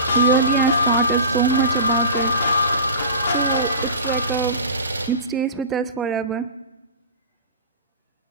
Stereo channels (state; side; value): inverted; both; correlation -0.31